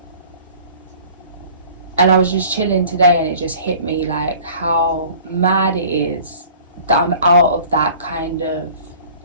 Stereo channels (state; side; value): inverted; both; correlation -0.48